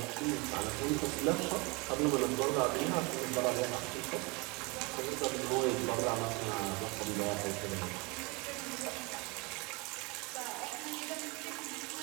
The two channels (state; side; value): quieter; left; 27.9 dB